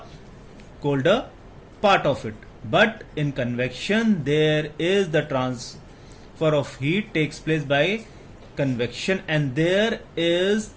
colder part of it. But in convection, there is the transfer of heat takes place by convection, and there is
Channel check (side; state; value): both; identical; correlation 1.00